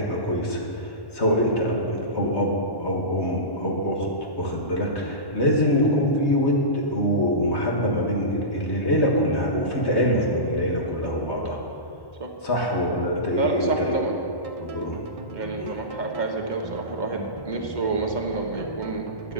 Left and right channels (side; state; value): right; late; 1.1 ms